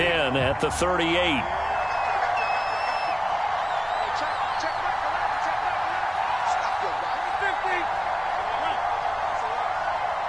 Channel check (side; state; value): both; identical; correlation 1.00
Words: at the 38.